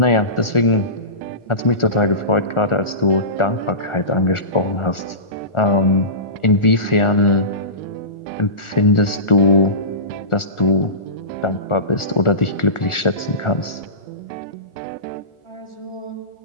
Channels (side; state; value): right; late; 1.4 ms